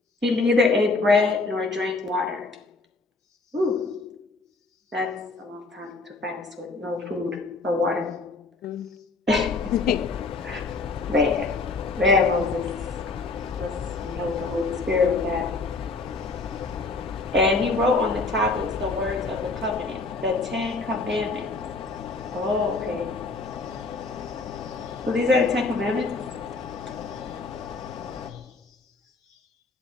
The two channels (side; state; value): right; quieter; 3.5 dB